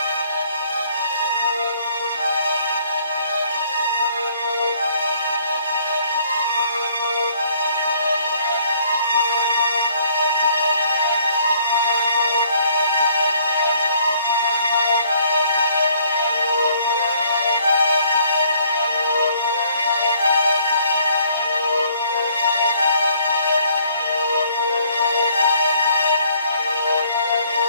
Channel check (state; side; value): inverted; both; correlation -0.62